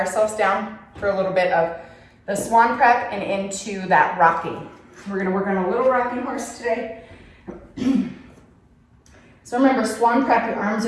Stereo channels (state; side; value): identical; both; correlation 1.00